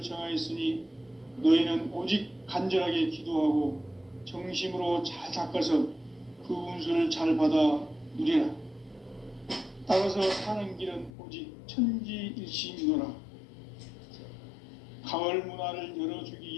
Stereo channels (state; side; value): drops out; right; at 11.1 s